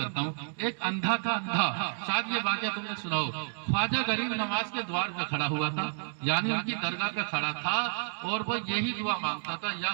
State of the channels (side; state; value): left; silent; digital silence